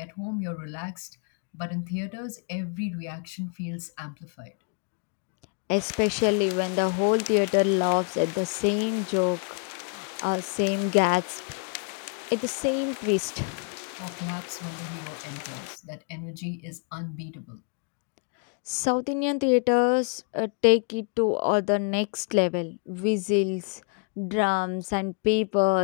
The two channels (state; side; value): quieter; right; 35.6 dB